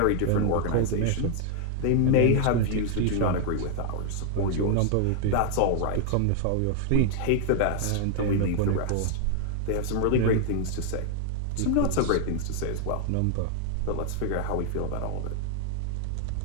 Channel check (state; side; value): different; both; correlation 0.00